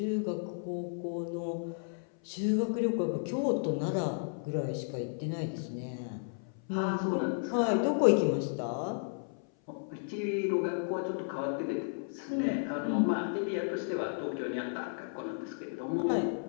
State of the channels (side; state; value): right; silent; 56 dB below the other